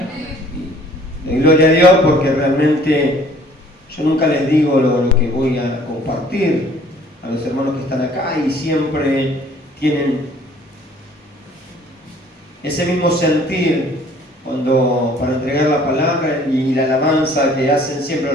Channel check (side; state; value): both; normal; correlation 0.55